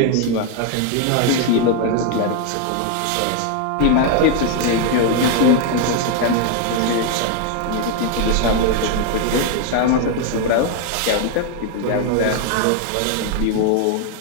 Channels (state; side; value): different; both; correlation 0.01